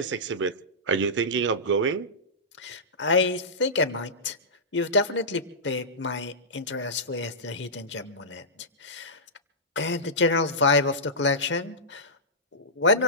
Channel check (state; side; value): normal; both; correlation -0.16